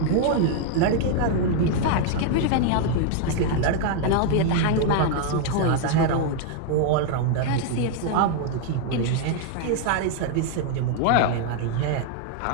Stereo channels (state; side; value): different; both; correlation 0.00